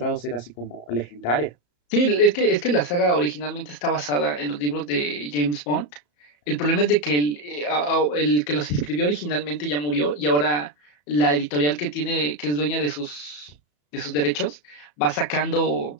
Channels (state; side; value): late; right; 34 ms